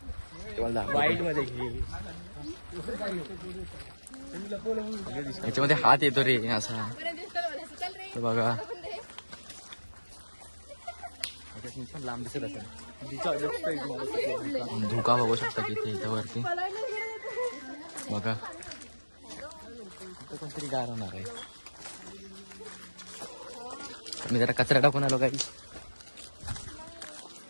वाईट मध्ये घे. याच्यामध्ये हात येतो रे असा. तर बघा पण लांब दिसत असेल. धोका बघू शकता किती इथं वरती बघा. इथं कोणतरी गार होणार आहे. मी जरा कचरा टाकून आलो काही.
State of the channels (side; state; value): both; inverted; correlation -1.00